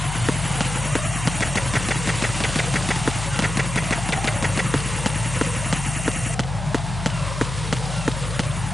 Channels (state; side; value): noise; left; hum, 6 dB below the sound